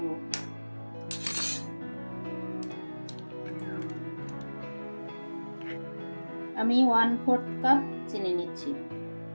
আমি 1/4 কাপ চিনি নিচ্ছি।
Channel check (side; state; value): both; inverted; correlation -1.00